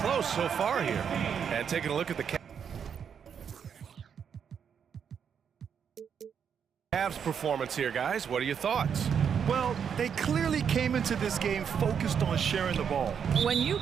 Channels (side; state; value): left; quieter; 7.5 dB